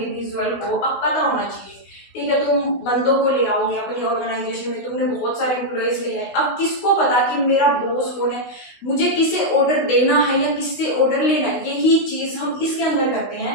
को अब पता होना चाहिए। ठीक है, तुम बंदों को ले आओगे अपनी ऑर्गेनाइजेशन में, तुमने बहुत सारे एम्प्लॉयज ले आए, अब किसको पता कि मेरा बॉस कौन है, मुझे किसे ऑर्डर देना है या किससे ऑर्डर लेना है। यही चीज हम इसके अंदर करते हैं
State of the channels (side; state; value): right; late; 16 ms